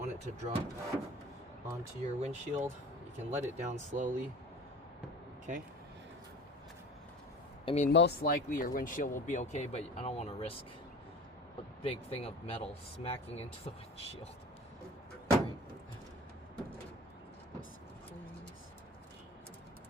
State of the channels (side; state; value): both; normal; correlation 0.39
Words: it to drop onto your windshield. You can let it down slowly. Okay. I mean, most likely your windshield will be okay, but I don't want to risk a big thing of metal smacking into the windshield. Right.